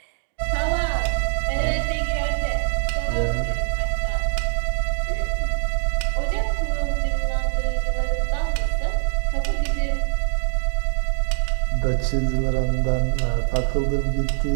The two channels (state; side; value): silent; left; digital silence